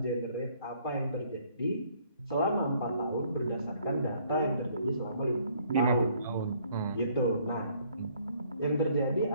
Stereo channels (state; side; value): inverted; both; correlation -0.63